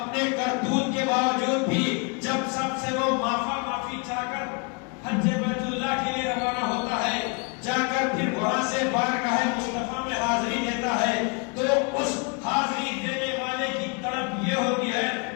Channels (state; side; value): quieter; right; 33.1 dB